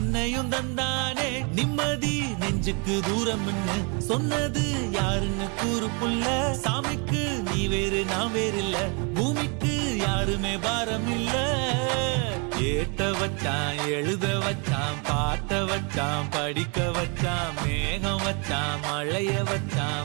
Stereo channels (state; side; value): quieter; left; 34.2 dB